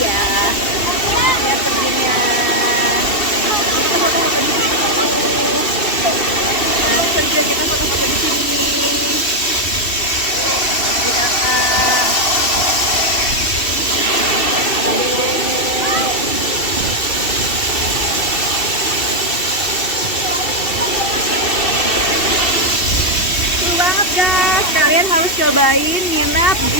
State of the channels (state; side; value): late; right; 2.7 ms